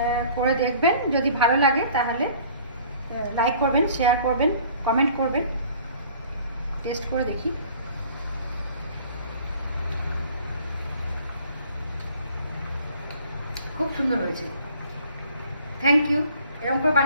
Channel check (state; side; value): inverted; both; correlation -0.52